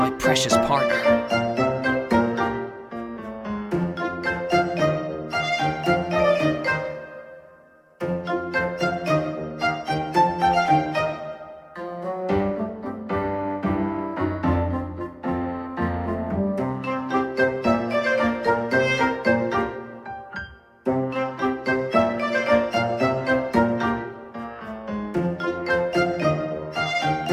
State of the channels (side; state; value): both; identical; correlation 1.00